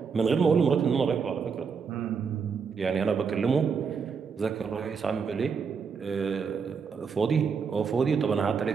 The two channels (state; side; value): quieter; left; 5.8 dB